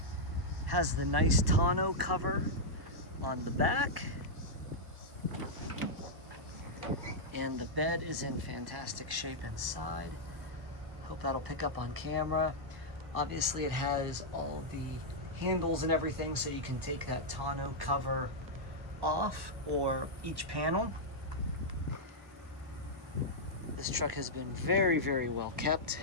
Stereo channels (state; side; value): late; left; 1.1 ms